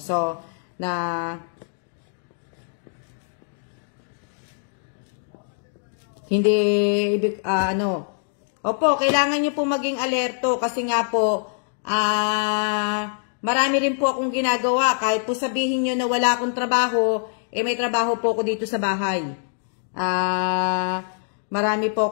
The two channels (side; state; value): right; silent; digital silence